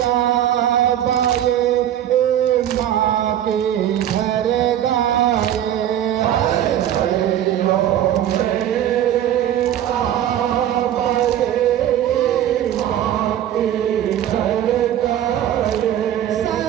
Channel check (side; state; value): left; quieter; 11.2 dB